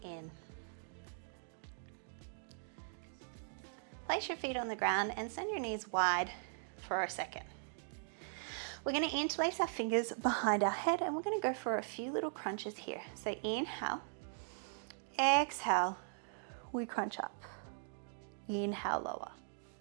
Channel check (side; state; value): left; silent; digital silence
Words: in. Place your feet on the ground and send your knees wide for a second. We're going to interlace our fingers behind our head and we're going to go for a few little crunches here. So inhale, exhale, we crunch up. Inhale, lower.